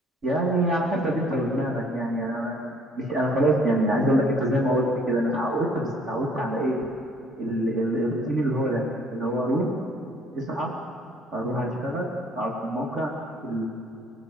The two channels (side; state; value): both; normal; correlation 0.59